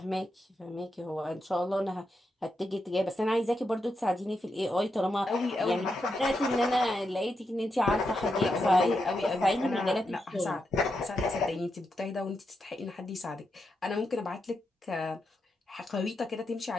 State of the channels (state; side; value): normal; both; correlation 0.85